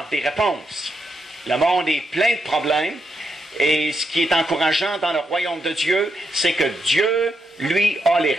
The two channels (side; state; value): both; normal; correlation 0.82